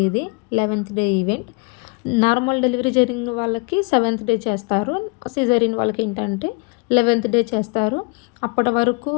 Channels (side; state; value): right; quieter; 31.2 dB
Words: ఇది. 11th day event. Normal delivery జరిగిన వాళ్ళకి 7th డే చేస్తారు. సిజేరియన్ వాళ్ళకి ఏంటంటే 11th డే చేస్తారు. అప్పటి వరకు